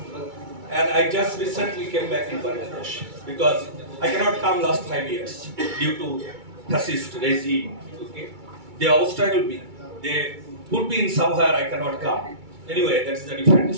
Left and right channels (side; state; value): left; late; 2.3 ms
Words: And I just recently came back in Bangladesh because I cannot come last 5 years due to fascist regime. Okay? They obstacle me. They put me in somewhere I cannot come. Anyway, that is a different